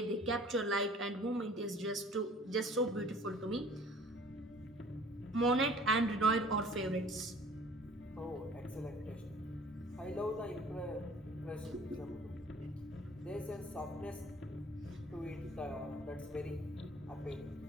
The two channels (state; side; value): normal; both; correlation 0.50